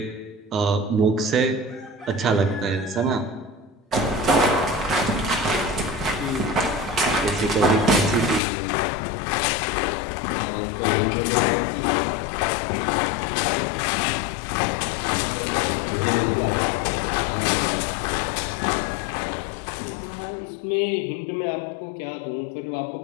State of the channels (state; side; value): drops out; right; at 8.4 s